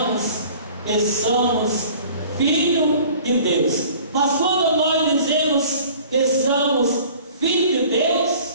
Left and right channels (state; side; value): inverted; both; correlation -0.48